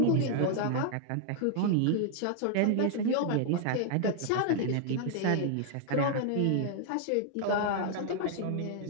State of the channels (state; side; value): different; both; correlation 0.00